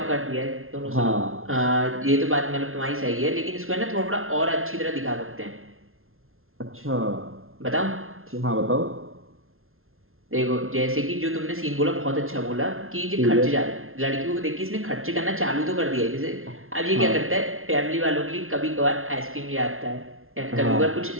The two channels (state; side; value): late; left; 0.61 ms